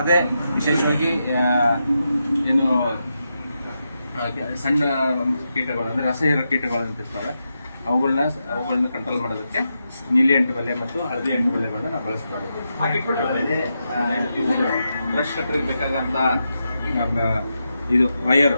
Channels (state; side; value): inverted; both; correlation -0.86